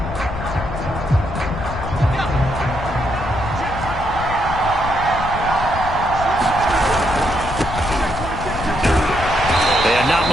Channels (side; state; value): left; noise; rumble, 8 dB below the sound